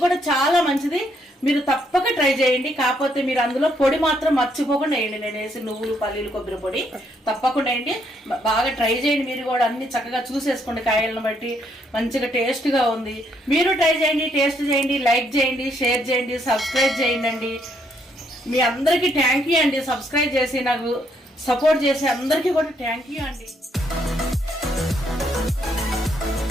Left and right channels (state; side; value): normal; both; correlation 0.72